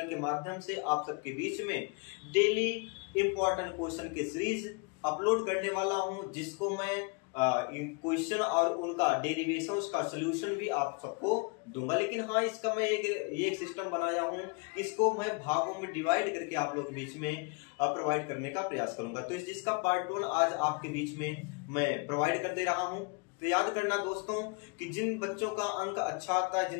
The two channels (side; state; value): right; quieter; 32.1 dB